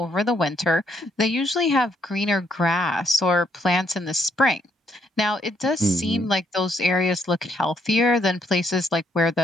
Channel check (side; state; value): both; normal; correlation 0.72